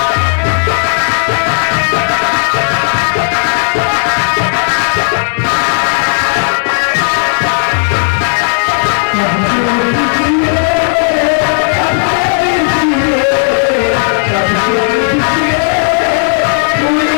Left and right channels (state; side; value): silent; right; digital silence